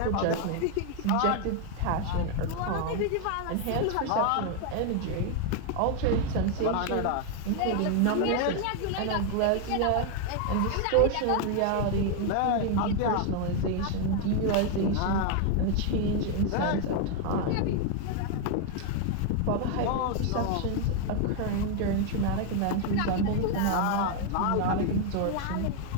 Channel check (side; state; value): both; different; correlation 0.01